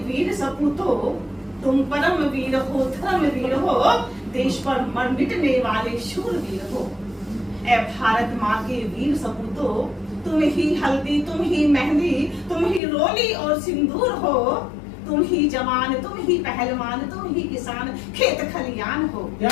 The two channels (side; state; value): right; drops out; at 12.8 s